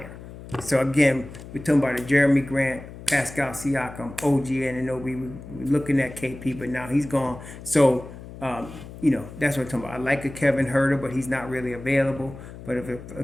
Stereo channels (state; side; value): noise; left; hum, 14 dB below the sound